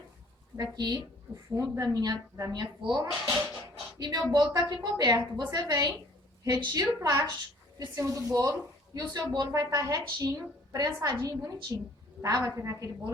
daqui, o fundo da minha forma, e meu bolo tá aqui coberto. Você vem, retira o plástico de cima do bolo e o seu bolo vai estar retinho, prensadinho e bonitinho, tá? Vai ficar aquele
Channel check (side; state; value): both; normal; correlation 0.55